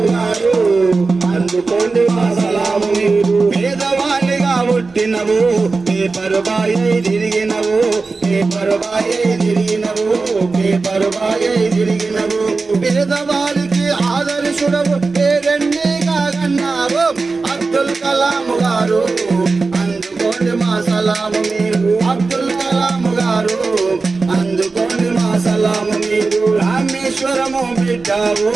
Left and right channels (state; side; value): quieter; left; 4.0 dB